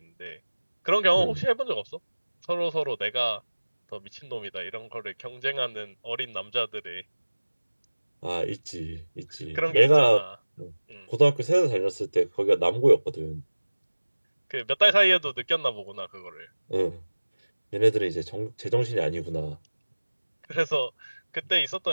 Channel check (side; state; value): both; inverted; correlation -1.00